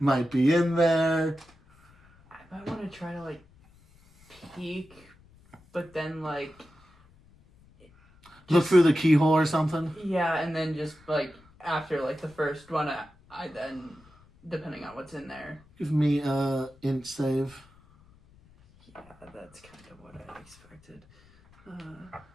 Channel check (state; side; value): noise; left; rumble, 28 dB below the sound